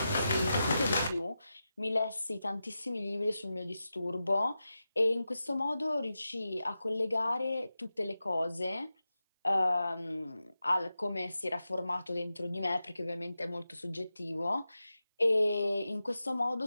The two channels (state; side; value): inverted; both; correlation -0.92